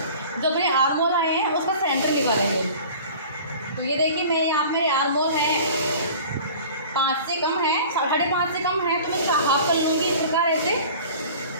जो अपने आर्मोल आए हैं उसका सेंटर निकालेंगे। तो ये देखिए मैं यहाँ पे आर्मोल है 5 से कम है, 5.5 से कम है, तो मैं इसका हाफ कर लूँगी इस प्रकार ऐसे।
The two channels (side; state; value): both; inverted; correlation -0.43